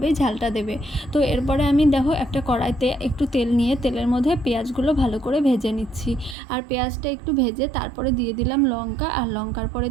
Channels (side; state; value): left; drops out; at 6.4 s